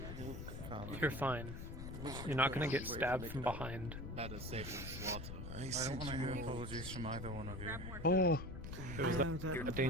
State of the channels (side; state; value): left; noise; rumble, 9 dB below the sound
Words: You're fine. You're not gonna get stabbed from behind. That is safe from slaughter. I don't want to hear apologies from either one of you. Oh. It was that